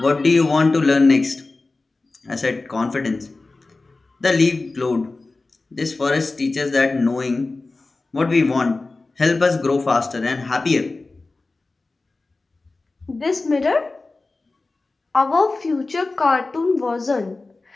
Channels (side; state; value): right; quieter; 3.4 dB